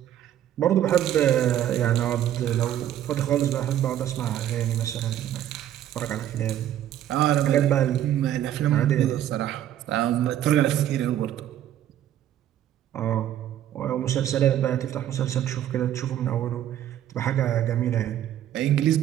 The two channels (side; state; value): left; quieter; 11.5 dB